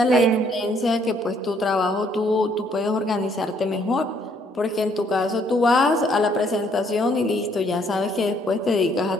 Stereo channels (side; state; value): both; normal; correlation 0.66